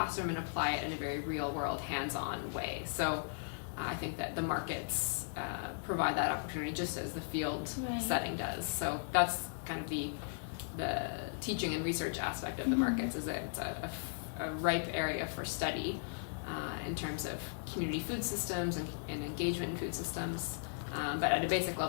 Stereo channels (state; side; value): silent; right; digital silence